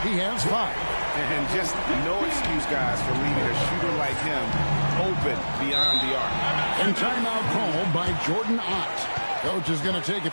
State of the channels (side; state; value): both; inverted; correlation -1.00